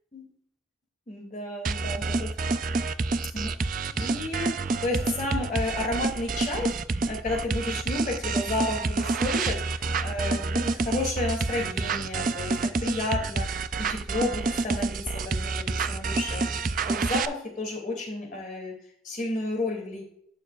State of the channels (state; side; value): normal; both; correlation 0.58